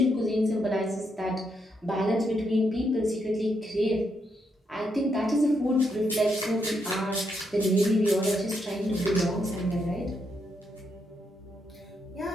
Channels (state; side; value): normal; both; correlation 0.79